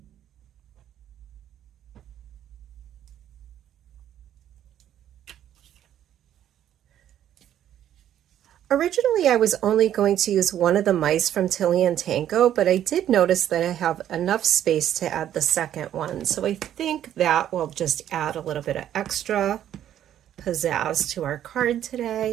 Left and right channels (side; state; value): left; quieter; 11.0 dB